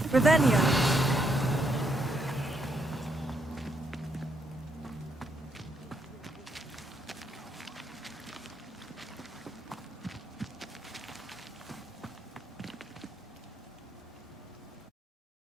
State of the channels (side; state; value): both; normal; correlation 0.76